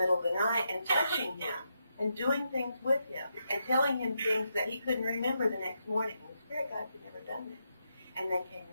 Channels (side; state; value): both; inverted; correlation -0.83